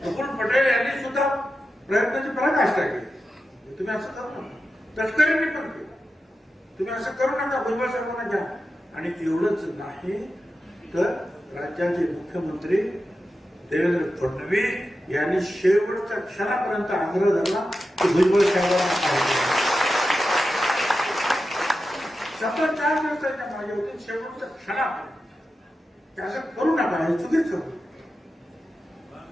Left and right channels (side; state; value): both; normal; correlation 0.91